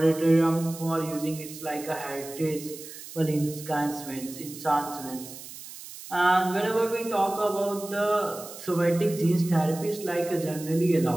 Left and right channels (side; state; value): right; noise; hiss, 14 dB below the sound